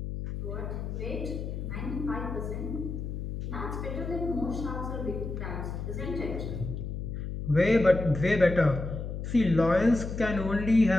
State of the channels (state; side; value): noise; left; hum, 5 dB below the sound